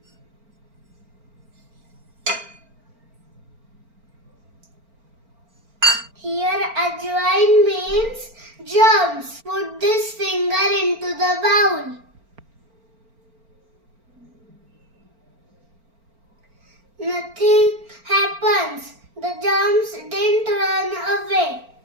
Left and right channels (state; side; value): late; left; 4.4 ms